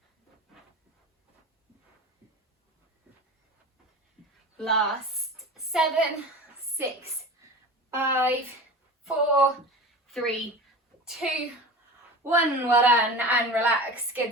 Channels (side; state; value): both; normal; correlation 0.33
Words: Last 7, 6, 5, 4, 3, 2, 1. Well done, and relax. Good